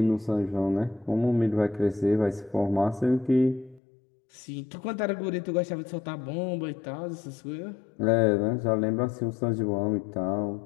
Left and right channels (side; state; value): right; drops out; at 3.8 s